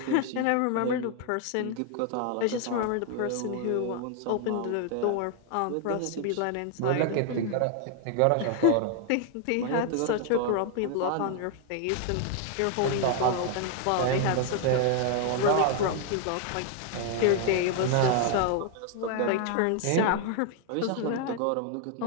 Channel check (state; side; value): different; both; correlation 0.00